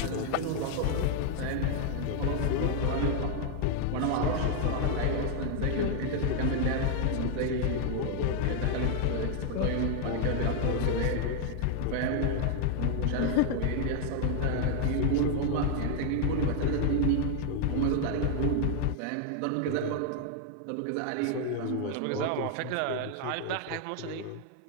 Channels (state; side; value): different; both; correlation 0.00